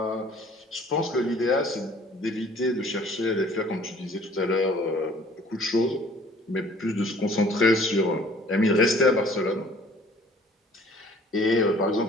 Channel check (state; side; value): normal; both; correlation 0.54